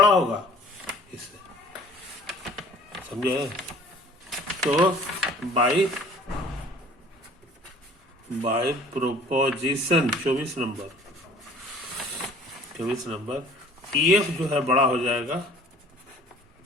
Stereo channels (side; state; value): both; normal; correlation 0.50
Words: होगा इससे, समझे। तो बाय प्रोपोजिशन 24 नंबर EF जो है बड़ा हो जाएगा